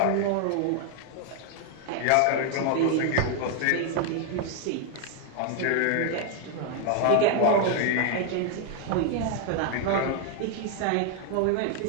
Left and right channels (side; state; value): both; different; correlation 0.00